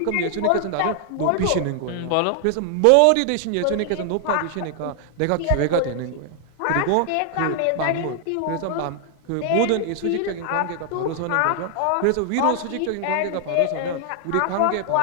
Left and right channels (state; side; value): different; both; correlation 0.00